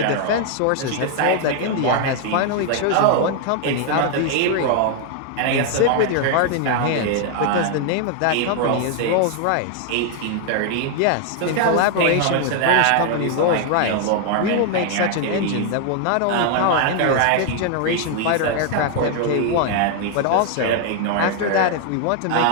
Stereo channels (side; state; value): both; different; correlation 0.00